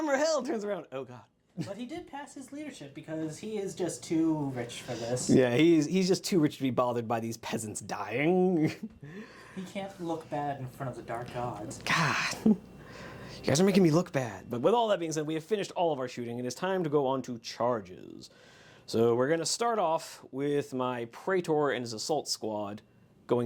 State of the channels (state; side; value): identical; both; correlation 1.00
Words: held. Turns around. Oh god. But he did pass his leadership because he is just too rich for this. Yeah, he's just too rich to be bothered by these peasants dying. He can't look bad in front of the dark gods. God. You guys are making me look bad. But with all that being said, we have finished all of our shooting. It is time to go on to charges. So we're going to start off with my Praetor and his assault squad